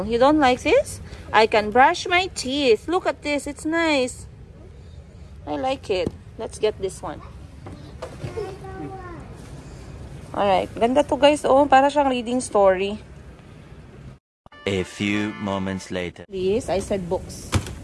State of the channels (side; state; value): both; identical; correlation 1.00